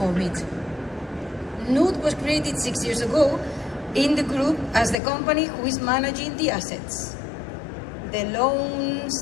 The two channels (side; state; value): right; drops out; at 5.0 s